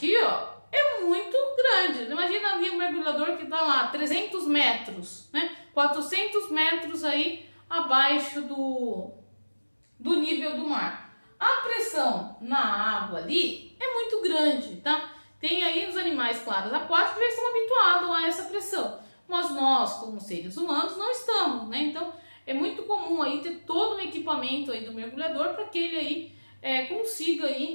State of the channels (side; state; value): both; inverted; correlation -1.00